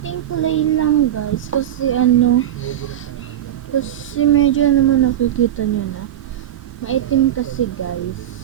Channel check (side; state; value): left; quieter; 11.3 dB